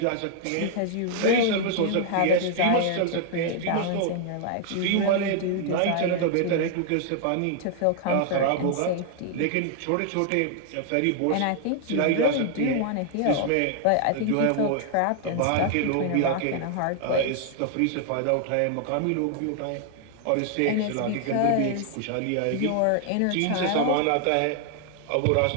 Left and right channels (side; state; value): both; different; correlation 0.00